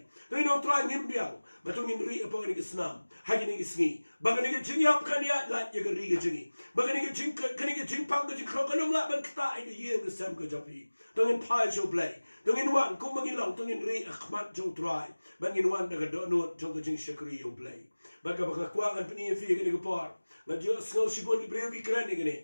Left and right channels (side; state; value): both; inverted; correlation -1.00